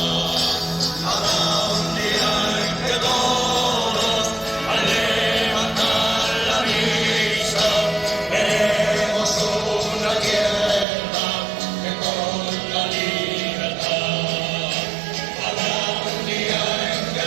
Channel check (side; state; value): left; drops out; at 10.9 s